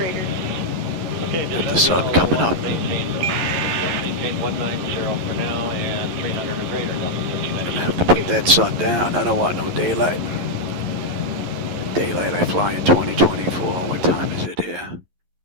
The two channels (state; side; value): late; left; 11 ms